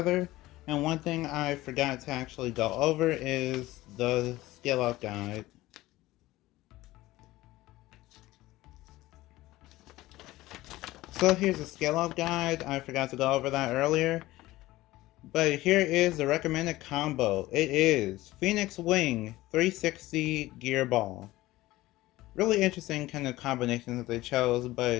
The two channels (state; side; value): quieter; right; 17.6 dB